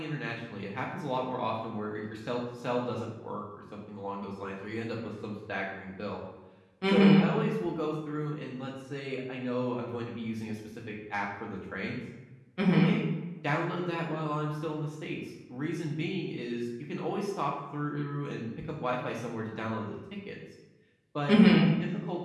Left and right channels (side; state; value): both; identical; correlation 1.00